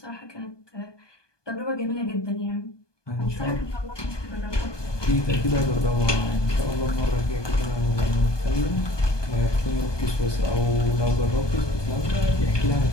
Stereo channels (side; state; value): right; late; 1.2 ms